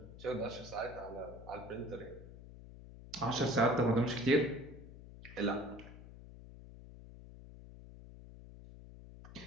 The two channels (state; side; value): noise; left; hum, 15 dB below the sound